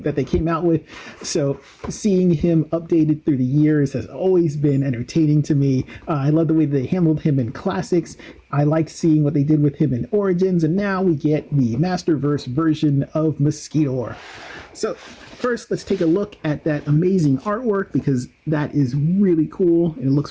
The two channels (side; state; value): both; identical; correlation 1.00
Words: they came out with. So seeing him updated through the years has always been entertaining to me. I love the way they handled him in Classics. I liked seeing what they did with him in Origins, and now we get the Masterverse version of Mosquitor. So first, let's take a look at that amazing artwork, because that is really cool and it